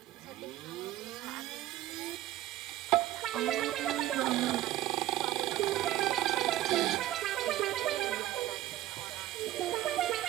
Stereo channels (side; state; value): left; quieter; 14.4 dB